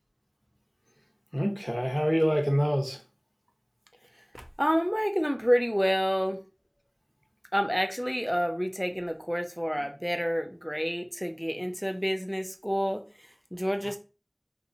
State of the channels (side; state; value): both; identical; correlation 1.00